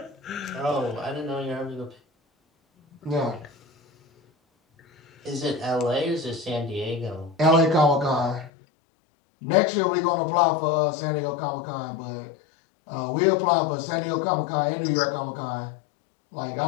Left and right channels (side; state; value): right; drops out; at 8.5 s